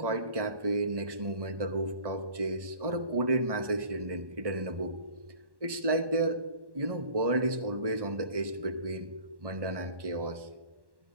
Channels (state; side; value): late; left; 1.1 ms